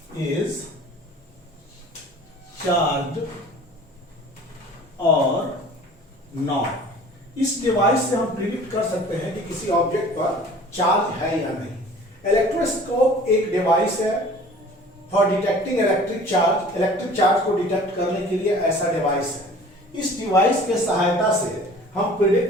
is charged or not. इस device से हम predict कर सकते हैं कि किसी object पर charge है या नहीं। इलेक्ट्रोस्कोप एक डिवाइस है फॉर डिटेक्टिंग इलेक्ट्रिक चार्ज को डिटेक्ट करने के लिए ऐसा डिवाइस है। इस डिवाइस के सहायता से हम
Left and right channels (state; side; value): normal; both; correlation 0.46